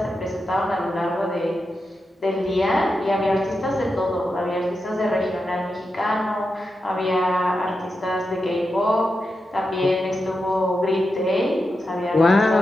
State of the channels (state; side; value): normal; both; correlation 0.88